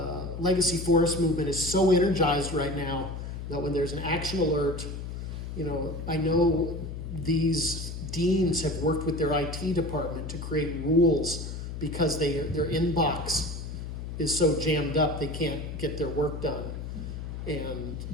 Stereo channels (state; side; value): noise; left; hum, 7 dB below the sound